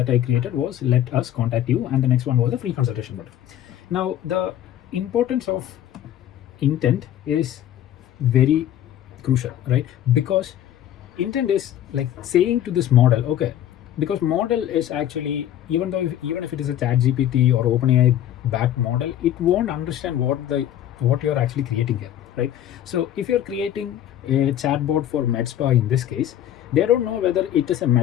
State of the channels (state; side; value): quieter; right; 11.5 dB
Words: I created was let us contact you, and the next one was the free consultation button. Now the importance of intent is very crucial, right? Because intent is like saying to this model, okay, because model is actually, even if it is a chat GPT or OpenAI backed model, it won't understand what you're actually creating here, right? So if you're creating a chatbot for med spa, in this case, they don't know whether it is a